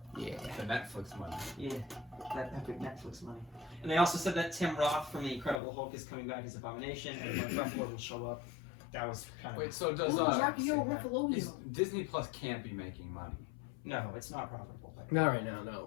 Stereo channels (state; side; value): drops out; right; at 5.6 s